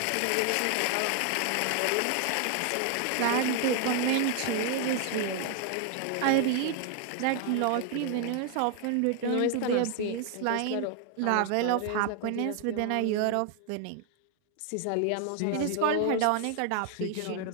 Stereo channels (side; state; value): both; different; correlation 0.00